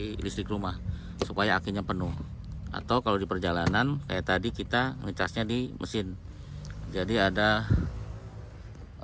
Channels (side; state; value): both; identical; correlation 1.00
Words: listrik rumah supaya akinya penuh. Atau kalau di perjalanan kayak tadi kita ngecasnya di mesin. Jadi ada